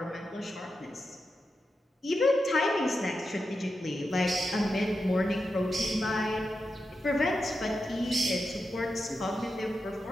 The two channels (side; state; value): both; normal; correlation 0.89